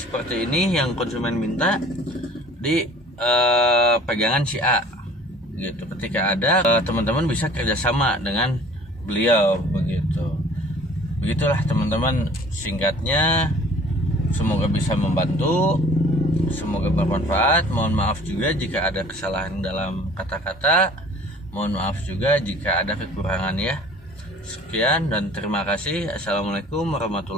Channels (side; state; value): both; normal; correlation 0.49